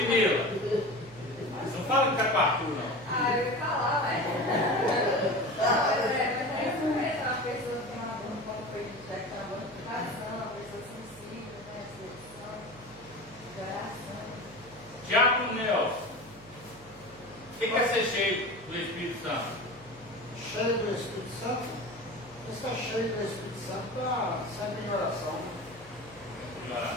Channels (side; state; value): right; noise; hum, 22 dB below the sound